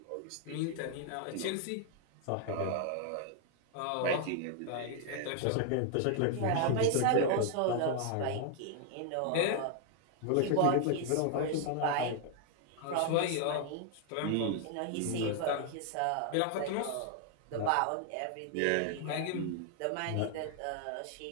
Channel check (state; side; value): different; both; correlation 0.00